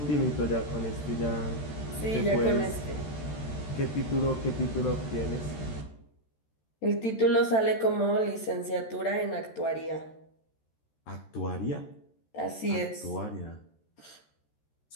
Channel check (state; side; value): late; right; 13 ms